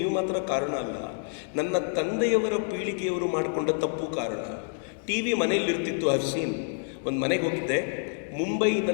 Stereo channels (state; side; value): silent; right; 59 dB below the other